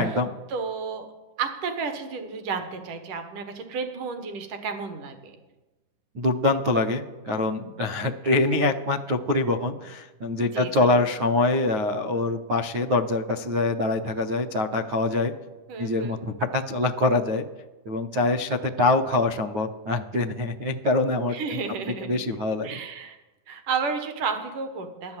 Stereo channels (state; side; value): late; left; 9.5 ms